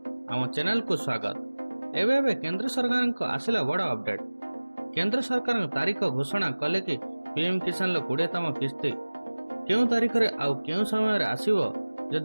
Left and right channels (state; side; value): inverted; both; correlation -1.00